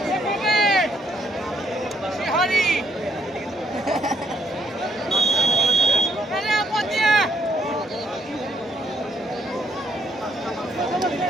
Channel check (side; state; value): both; normal; correlation 0.71